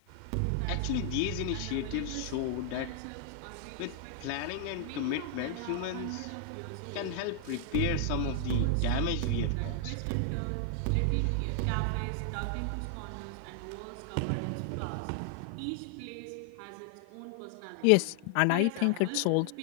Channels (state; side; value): different; both; correlation 0.00